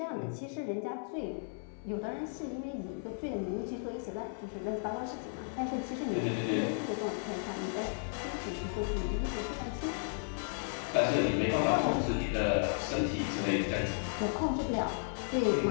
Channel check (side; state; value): right; silent; 55 dB below the other